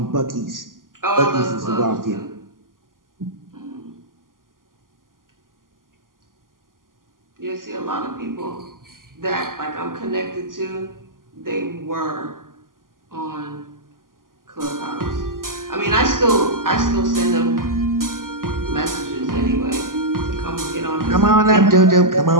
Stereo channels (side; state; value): left; late; 0.91 ms